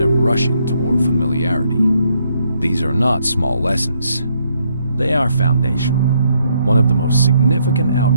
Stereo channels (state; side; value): inverted; both; correlation -0.73